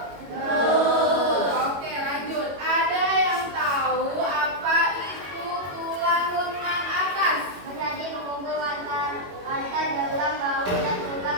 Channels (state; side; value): late; left; 21 ms